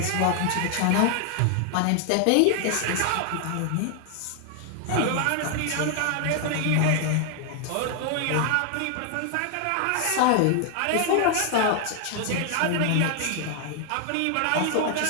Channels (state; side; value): different; both; correlation 0.00